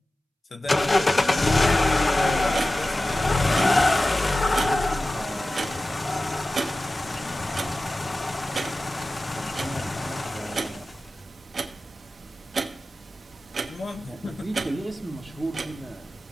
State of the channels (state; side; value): normal; both; correlation 0.95